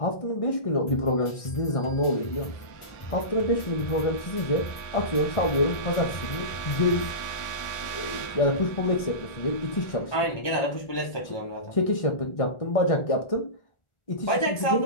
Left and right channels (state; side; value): late; right; 1.4 ms